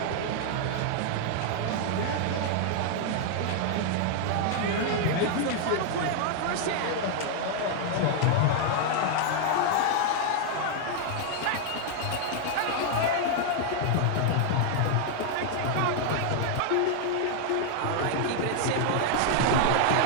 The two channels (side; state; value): both; different; correlation 0.00